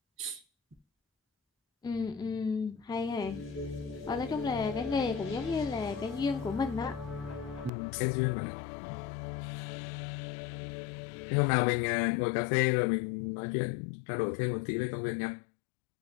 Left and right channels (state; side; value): drops out; right; at 7.7 s